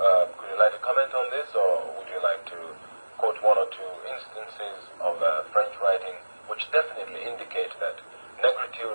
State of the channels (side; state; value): both; inverted; correlation -1.00